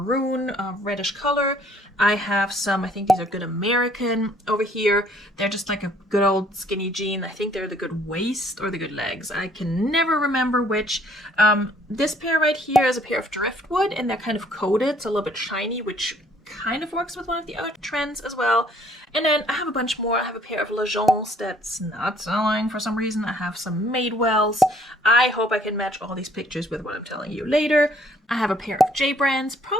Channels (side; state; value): both; normal; correlation 0.61